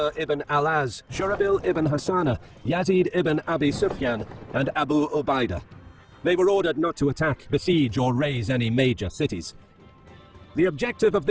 ibn al-Az, Shurabil ibn Hassana, Yazid ibn Abi Sufyan, and Abu Ubaidah. They were ordered not to attack, besiege, or raze any major cities. The objective of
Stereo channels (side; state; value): both; identical; correlation 1.00